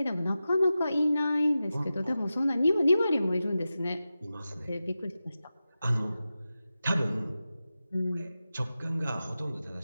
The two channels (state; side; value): inverted; both; correlation -0.93